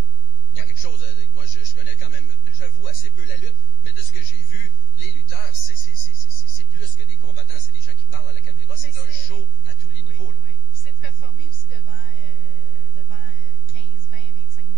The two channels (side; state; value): left; late; 10 ms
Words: Il y a quelque chose... moi, je connais quand même, j'avoue, assez peu la lutte, mais de ce que j'ai vu, les lutteurs, c'est plus que des combattants, c'est des gens qui parlent à la caméra. C'est un show à tous les niveaux, là. Oui, c'est de performer aussi devant 15, 20, 25